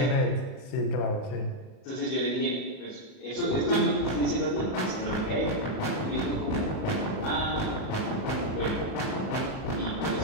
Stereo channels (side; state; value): right; late; 38 ms